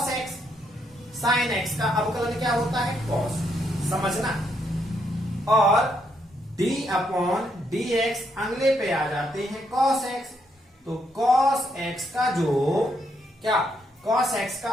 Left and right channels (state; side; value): normal; both; correlation 0.76